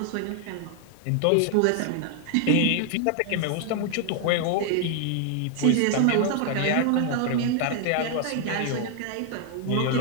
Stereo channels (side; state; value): both; different; correlation 0.00